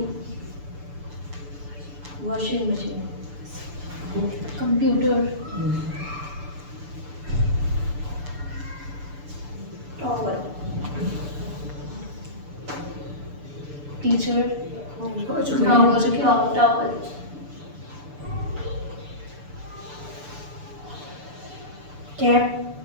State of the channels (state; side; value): late; left; 6.9 ms